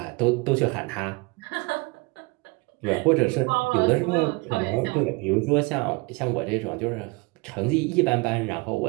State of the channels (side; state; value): left; quieter; 26.5 dB